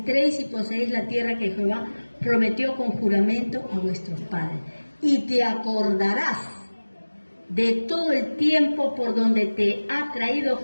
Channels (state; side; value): inverted; both; correlation -1.00